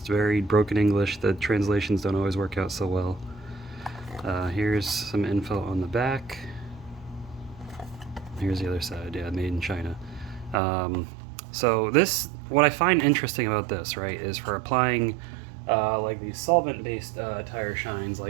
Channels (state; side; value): drops out; left; at 10.6 s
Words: very broken English. The translations don't always work out so well. Here's some info on the back. Here's the other side. Yeah, made in China. So this, what I find interesting about this, right, is for applying like these solvent-based tire shines,